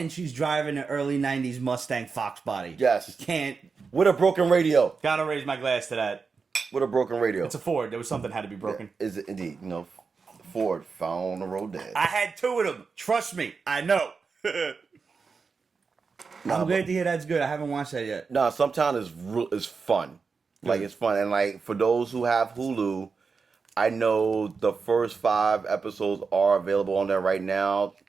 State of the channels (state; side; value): quieter; left; 5.0 dB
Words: she's driving an early 90s Mustang Fox body. Yes. Can't. With a broken radio. Gotta raise my glass to that. With a broken radio. It's a Ford. There was something had to be broken. Yeah, is it indeed? You know, Ford found on the road dead. I had 2 of them. Trust me. I know. I'm glad to hear that's good. I haven't watched that yet. No, sometimes it's fun. Like, it's fun. And, like, for those who have Hulu, I know the first 5 episodes are available on there right now.